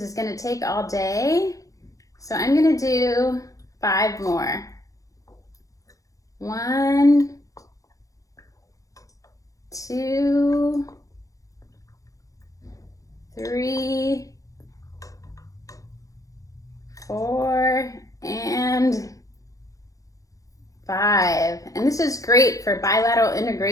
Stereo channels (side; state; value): right; late; 0.16 ms